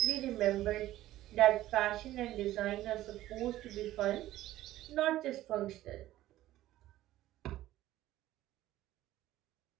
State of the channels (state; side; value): quieter; left; 14.8 dB